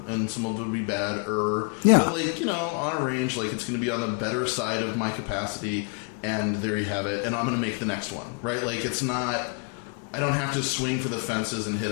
and some of it will be bad-er. Yeah. But, like, on a range, like, it's going to be on the better side of my capacity, and there you have it. And I'm going to make the next one, right? Like, it's not... I don't have to swing for the fences and hit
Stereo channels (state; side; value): quieter; right; 38.7 dB